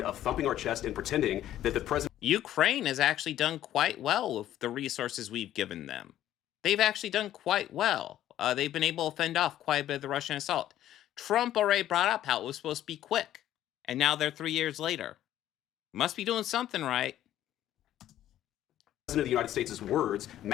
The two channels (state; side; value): quieter; right; 12.5 dB